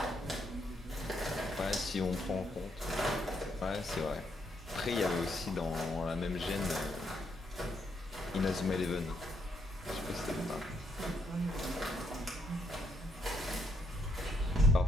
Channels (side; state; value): both; normal; correlation 0.75